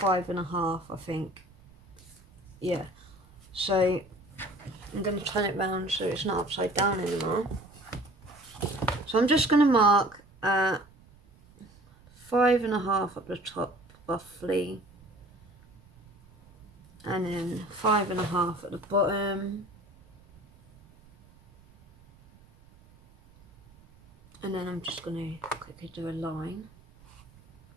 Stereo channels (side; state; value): right; noise; rumble, 26 dB below the sound